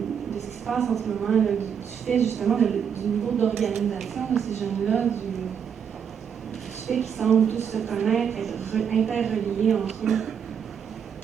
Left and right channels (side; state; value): left; quieter; 7.5 dB